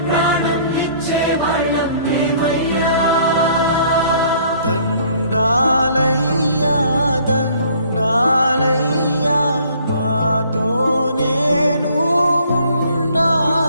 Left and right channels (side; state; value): both; inverted; correlation -0.58